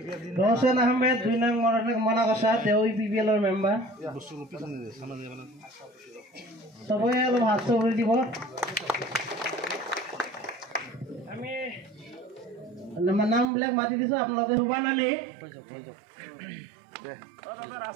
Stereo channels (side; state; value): left; drops out; at 13.5 s